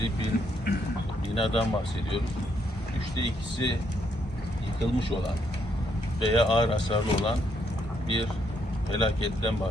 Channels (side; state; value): both; normal; correlation 0.74